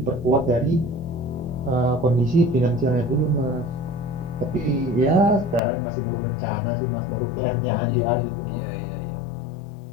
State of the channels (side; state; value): right; drops out; at 5.6 s